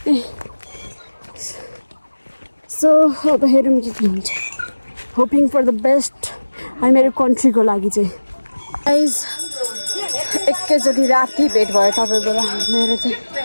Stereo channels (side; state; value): both; inverted; correlation -1.00